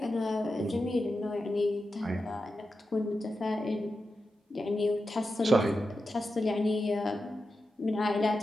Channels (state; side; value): normal; both; correlation 0.90